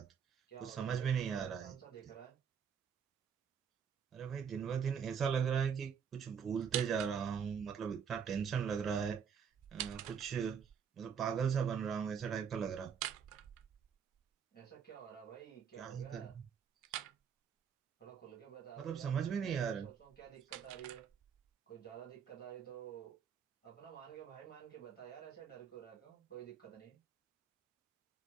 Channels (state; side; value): quieter; left; 7.2 dB